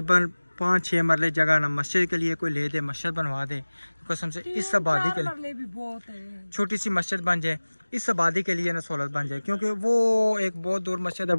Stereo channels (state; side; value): inverted; both; correlation -1.00